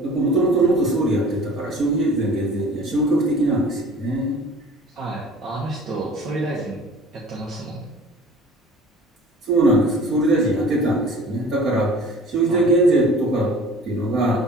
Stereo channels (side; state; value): both; normal; correlation 0.45